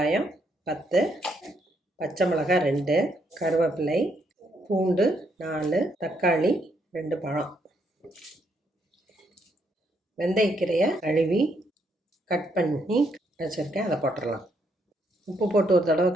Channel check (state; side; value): normal; both; correlation 0.74